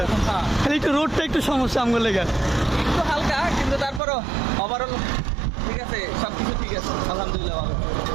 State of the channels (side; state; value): left; drops out; at 4.0 s